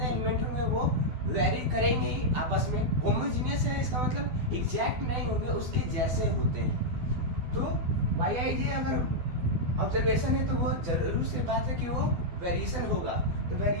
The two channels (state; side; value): late; left; 12 ms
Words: एलिमेंट होंगे, वो वेरी करेंगे ही आपस में। होमोजीनियस है, इसका मतलब एग्जैक्ट नहीं होंगे, उसके जैसे होते हैं। तो yi अगर ऑब्जर्वेशन है तो वो जरूर से बात है कि वो वेरिएशन होगा। तो